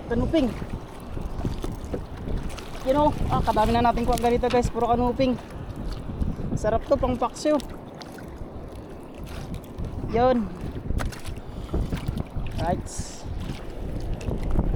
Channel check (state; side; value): identical; both; correlation 1.00